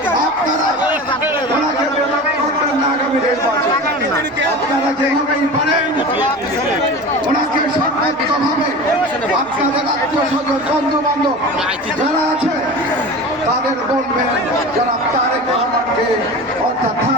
আপনারা ওনাকে করবেন না আগামী নির্বাচন। আপনারা যেভাবেই পারেন ওনাকে সর্বোচ্চভাবে আপনাদের আত্মীয়-স্বজন, বন্ধু-বান্ধব যারা আছে তাদের বলবেন যারা তারেক রহমানকে অর্থাৎ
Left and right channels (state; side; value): normal; both; correlation 0.33